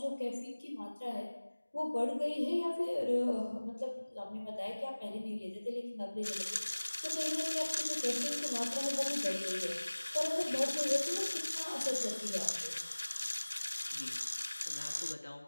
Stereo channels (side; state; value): both; inverted; correlation -1.00